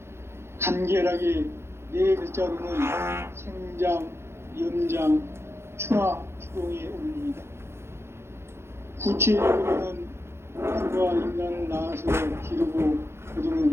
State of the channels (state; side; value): late; left; 0.12 ms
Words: 간결하게 네 글자로는 생장, 염장, 추나 추동의 원리이다. 구체적으로는 우주가 인간을 낳아서 기르고